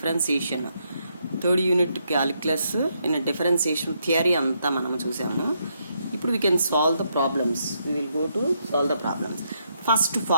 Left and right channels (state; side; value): inverted; both; correlation -0.77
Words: Third unit calculus in a differentiation theory anta manam chusamu. Now we can solve the problems. We will go to solve the problems. First